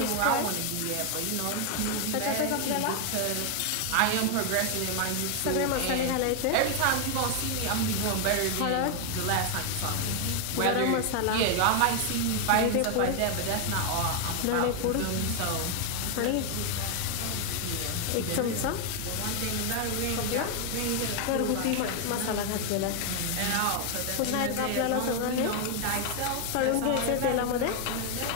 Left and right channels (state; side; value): different; both; correlation 0.01